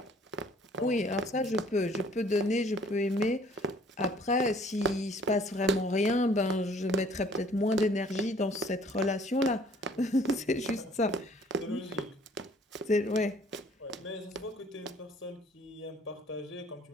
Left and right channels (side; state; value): both; normal; correlation 0.57